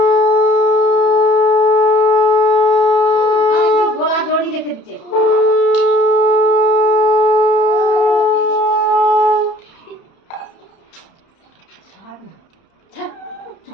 গোলা জড়ি রেখে দিচ্ছে।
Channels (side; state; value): right; late; 31 ms